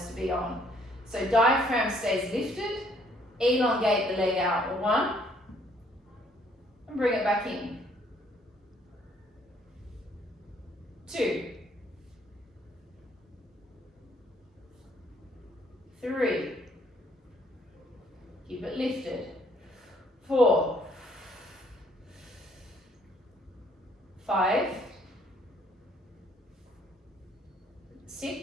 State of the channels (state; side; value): normal; both; correlation 0.65